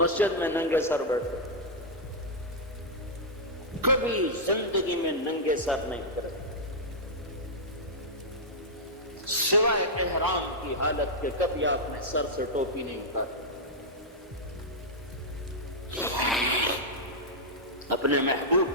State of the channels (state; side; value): normal; both; correlation -0.07